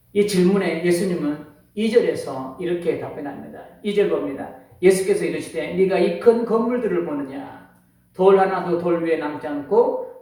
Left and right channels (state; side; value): identical; both; correlation 1.00